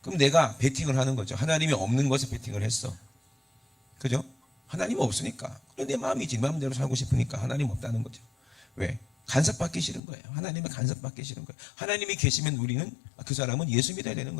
그럼 내가 베팅을 하는 거죠. 하나님이 없는 것에 베팅을 했어. 그죠? 하나님 없으니까. 그래 내 마음이지. 마음대로 살고 싶으니까 하나님 없다는 거죠. 왜? 간섭받기 싫은 거예요. 하나님의 간섭받기 싫은 거예요. 하나님이 계시면 우리는 그 사람은 예수 믿어야 되는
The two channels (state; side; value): drops out; right; at 10.0 s